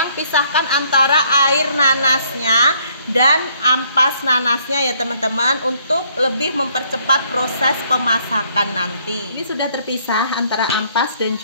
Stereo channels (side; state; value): both; inverted; correlation -0.65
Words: pisahkan antara air nanasnya dan ampas nanasnya ya teman-teman, untuk lebih mempercepat proses pemasakan nanti. Ini sudah terpisah antara ampas dan